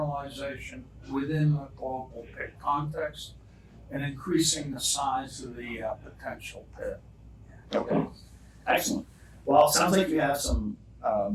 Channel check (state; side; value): identical; both; correlation 1.00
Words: within the global pit context and increasing the size of the potential pit. Okay. Excellent. Well, it sounds like you have some